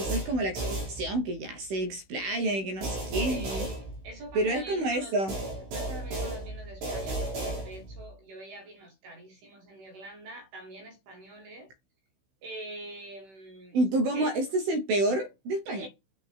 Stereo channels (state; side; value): late; left; 16 ms